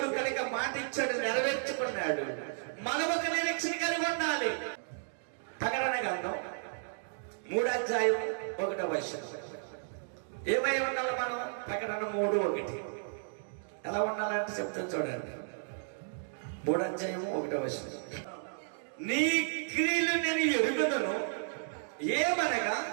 కనుక మాట ఇచ్చాడు, నెరవేర్చుకున్నాడు. మనం ఒక నిరీక్షణ కలిగి ఉండాలి. ప్రకటన గ్రంథం 3వ అధ్యాయం 1వ వచనం. ఏమై ఉండాలి మనం? ప్రకటన 3:1 ఎలా ఉండాలంటే చెప్తాను చూడండి. 3వ అధ్యాయం 1వ వచనం. నీ క్రియలు నేను ఎరుగుదను, ఏమనగా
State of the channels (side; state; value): left; silent; digital silence